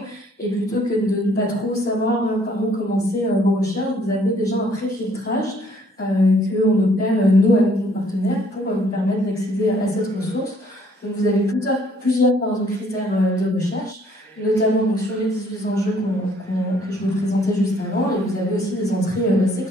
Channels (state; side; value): normal; both; correlation 0.62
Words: et plutôt que de ne pas trop savoir par où commencer vos recherches, vous avez déjà un pré-filtrage qu'on opère nous avec nos partenaires pour vous permettre d'accéder à cette ressource. Donc vous avez plusieurs critères de recherche, notamment donc, sur les 18 enjeux que je vous présentais juste avant, et vous avez aussi des entrées